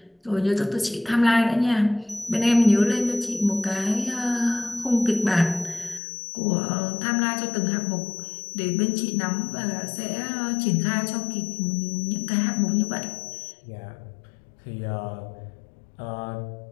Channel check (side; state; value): right; drops out; at 6.0 s